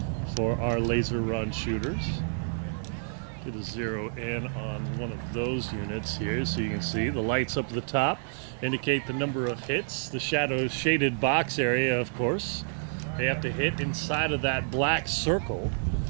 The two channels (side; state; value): left; silent; digital silence